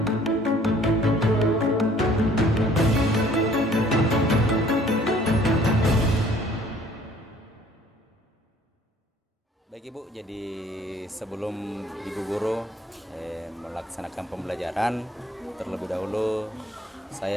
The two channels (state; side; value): normal; both; correlation 0.57